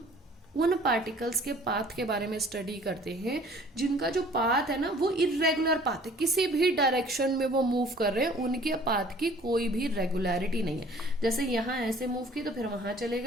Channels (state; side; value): normal; both; correlation 0.52